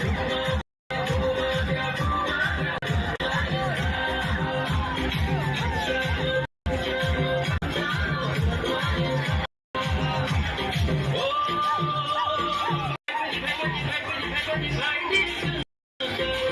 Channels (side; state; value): both; identical; correlation 1.00